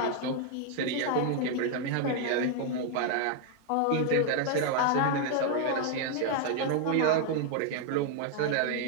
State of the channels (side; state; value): both; different; correlation 0.00